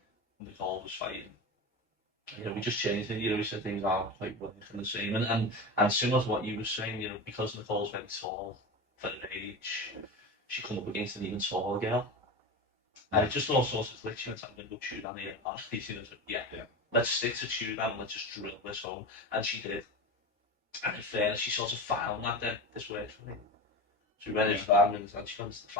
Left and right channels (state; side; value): normal; both; correlation 0.25